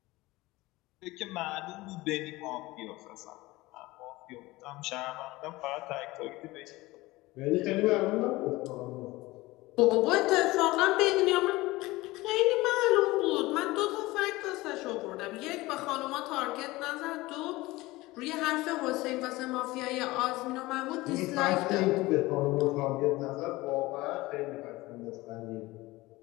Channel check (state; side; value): quieter; right; 19.9 dB